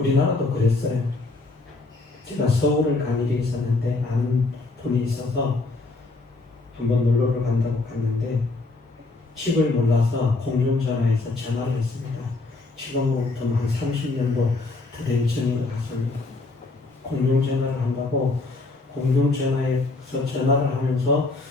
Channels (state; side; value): quieter; right; 3.3 dB